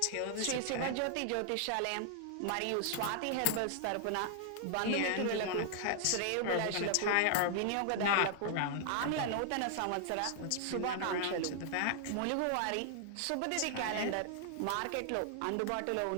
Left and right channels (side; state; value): both; different; correlation 0.00